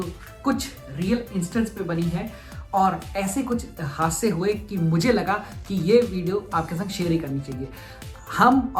कुछ रियल इंस्टेंस पे बनी है और ऐसे कुछ हादसे हुए कि मुझे लगा कि ये वीडियो आपके साथ शेयर ही करनी चाहिए। हम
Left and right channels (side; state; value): both; identical; correlation 1.00